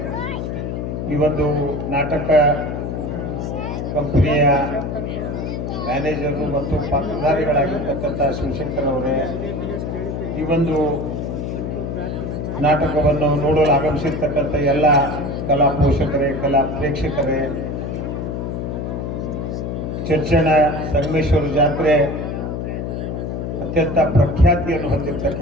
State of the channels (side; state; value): left; noise; hum, 4 dB below the sound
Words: ಈ ಒಂದು ನಾಟಕ ಕಂಪನಿಯ ಮ್ಯಾನೇಜರು ಮತ್ತು ಪಾತ್ರಧಾರಿಗಳಾಗಿರ್ತಕ್ಕಂಥ ಶಿವಶಂಕರ್ ಅವರೇ, ಈ ಒಂದು ನಾಟಕವನ್ನು ನೋಡಲು ಆಗಮಿಸಿರ್ತಕ್ಕಂಥ ಎಲ್ಲ ಕಲಾ ಪೋಷಕರೇ, ಕಲಾ ಪ್ರೇಕ್ಷಕರೇ, ಚರ್ಚನ ಸಂಗಮೇಶ್ವರ ಜಾತ್ರೆ ಅತ್ಯಂತ ಪ್ರಖ್ಯಾತಿಯನ್ನು